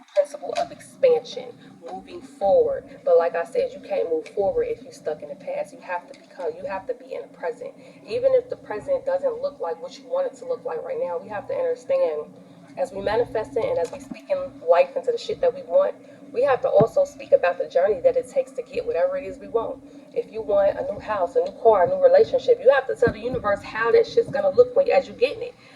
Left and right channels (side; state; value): both; identical; correlation 1.00